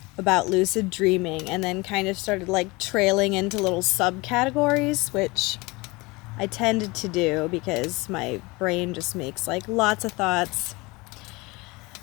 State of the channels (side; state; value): right; quieter; 24.0 dB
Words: about lucid dreaming, and then kind of started like trailing into little subcategories, which I tended to do because my brain just makes like lots of thoughts.